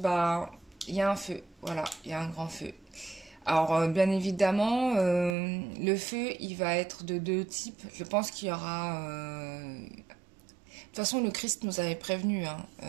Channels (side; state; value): left; drops out; at 5.4 s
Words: il y a un feu. Voilà, il y a un grand feu. Alors, bien évidemment, le feu, il va être de deux types. Je pense qu'il y aura. De toute façon, le Christ nous avait prévenu, hein.